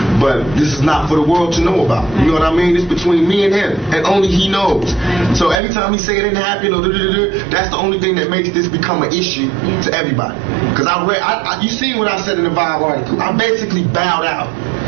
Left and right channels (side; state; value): left; drops out; at 5.6 s